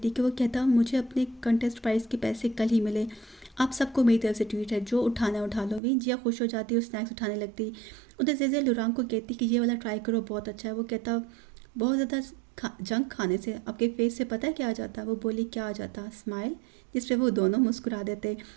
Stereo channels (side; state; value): left; drops out; at 5.8 s